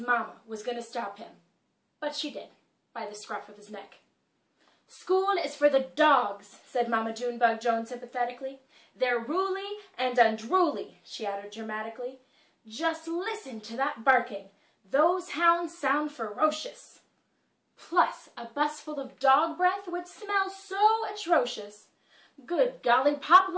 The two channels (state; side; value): identical; both; correlation 1.00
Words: was going to stop him. But she did, by the scruff of his neck. "School is for the dogs," said Mama Junebug Jones sympathetically. "They're ruly and unruly," she added dramatically. "Just listen to that barking. Those hounds sound ferocious. Plus, a bus full of dog breath would smell so atrocious. Good golly pop